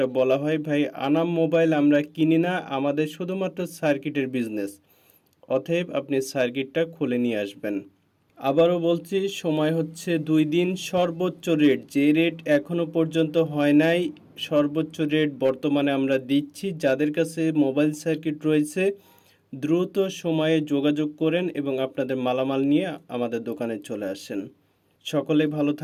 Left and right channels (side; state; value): both; identical; correlation 1.00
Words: বলা হয়, ভাই আনাম মোবাইল আমরা কিনি না, আমাদের শুধুমাত্র সার্কিটের বিজনেস। অতএব আপনি সার্কিটটা খুলে নিয়ে আসবেন। আবারও বলছি, সময় হচ্ছে 2 দিন। সর্বোচ্চ রেট, যে রেট এখনো পর্যন্ত হয় নাই, সর্বোচ্চ রেট বর্তমানে আমরা দিচ্ছি। যাদের কাছে মোবাইল সার্কিট রয়েছে দ্রুত সময়ে যোগাযোগ করেন এবং আপনাদের মালামাল নিয়ে আমাদের দোকানে চলে আসেন। সকলে ভালো